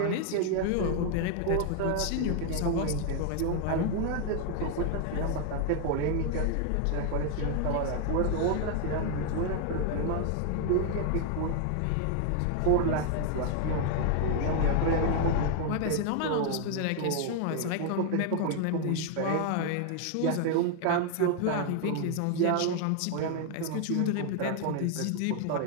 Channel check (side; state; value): both; different; correlation 0.00